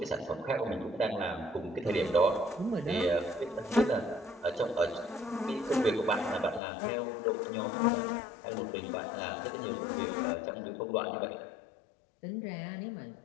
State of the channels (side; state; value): right; drops out; at 6.6 s